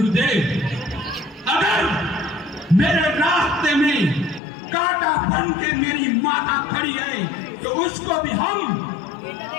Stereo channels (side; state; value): right; drops out; at 4.4 s